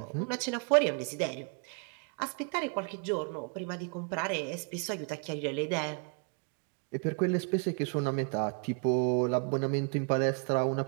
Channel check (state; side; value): quieter; left; 37.5 dB